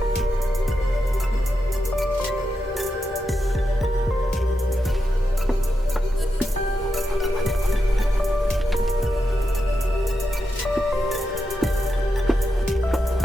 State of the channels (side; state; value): both; normal; correlation 0.87